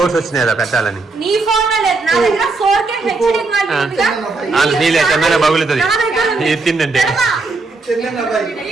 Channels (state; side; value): quieter; left; 3.6 dB